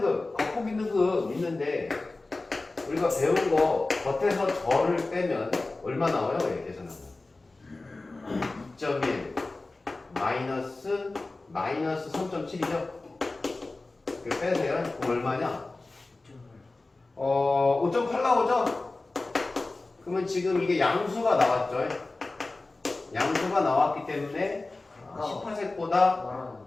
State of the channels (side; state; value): right; quieter; 3.2 dB